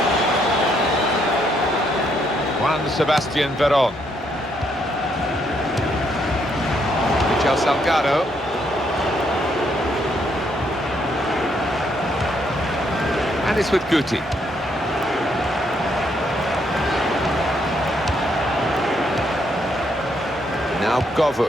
Juan Sebastian Veron. Michel Salgado. And it's with Guti. Now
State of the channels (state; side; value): normal; both; correlation 0.73